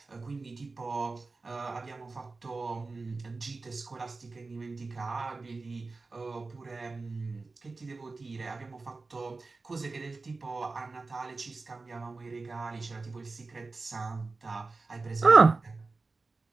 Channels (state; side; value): quieter; left; 3.8 dB